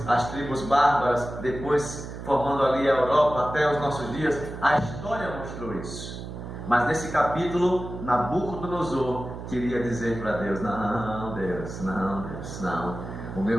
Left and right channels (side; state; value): right; noise; hum, 9 dB below the sound